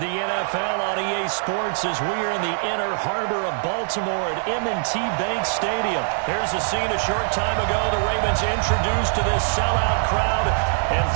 NFL on EA Sports as we are in the inner harbor of Baltimore at M&T Bank Stadium. Here's a scene a short time ago. The Ravens introduced to this sellout crowd, and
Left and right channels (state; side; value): silent; left; digital silence